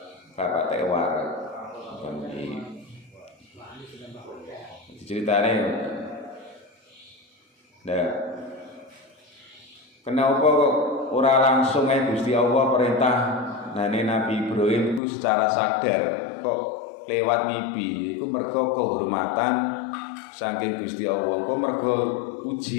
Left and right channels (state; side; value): drops out; right; at 15.0 s